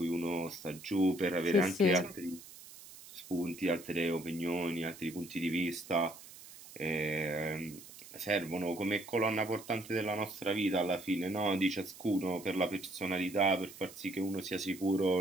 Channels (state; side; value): noise; right; hiss, 17 dB below the sound